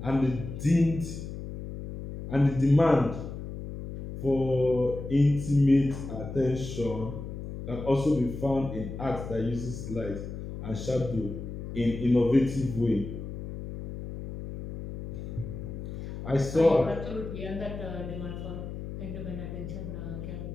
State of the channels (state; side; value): noise; left; hum, 8 dB below the sound